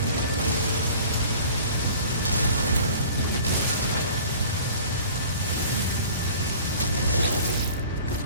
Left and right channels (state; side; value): inverted; both; correlation -0.46